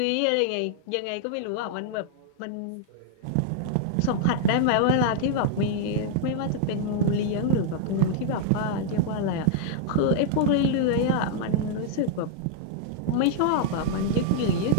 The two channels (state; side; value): different; both; correlation -0.01